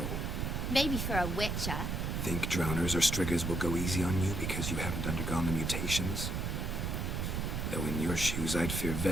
Maybe for a witcher. Think drowners or striggers will go easy on you because you haven't undergone the mutations? Though in your shoes, I'd fear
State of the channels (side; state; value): right; noise; rumble, 1 dB below the sound